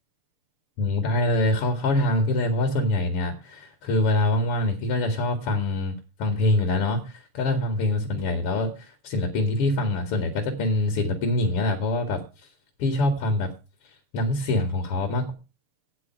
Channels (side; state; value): right; late; 7.1 ms